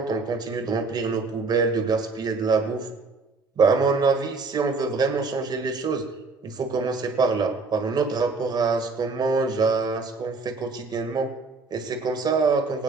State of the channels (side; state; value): left; quieter; 4.0 dB